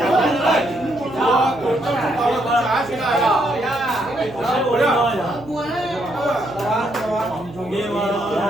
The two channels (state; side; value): noise; right; hum, 18 dB below the sound